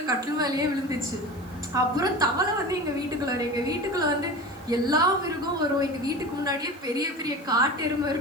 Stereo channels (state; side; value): noise; right; hiss, 27 dB below the sound